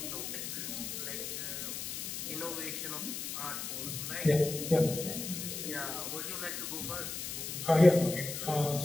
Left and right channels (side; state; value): left; noise; hiss, 5 dB below the sound